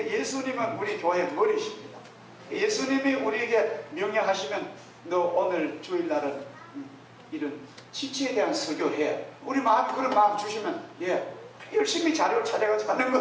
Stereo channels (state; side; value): identical; both; correlation 1.00